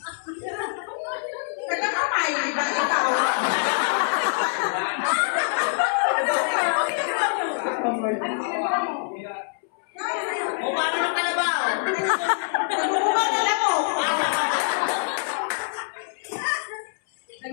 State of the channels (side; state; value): right; silent; 62 dB below the other